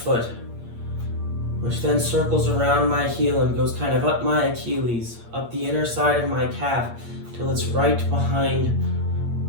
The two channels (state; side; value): late; left; 8.6 ms